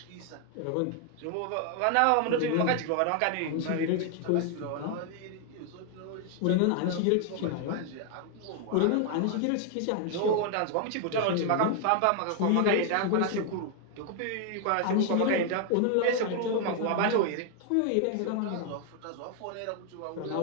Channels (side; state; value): both; different; correlation 0.00